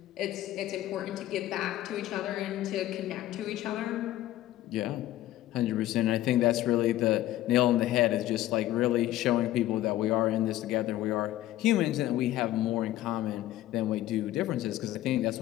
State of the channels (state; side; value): quieter; right; 14.5 dB